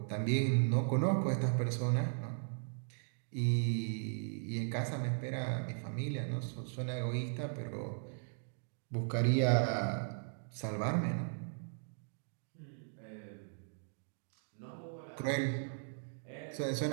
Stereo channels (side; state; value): left; silent; digital silence